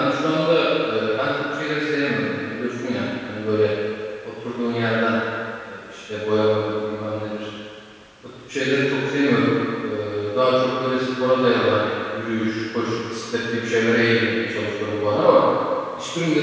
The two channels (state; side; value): identical; both; correlation 1.00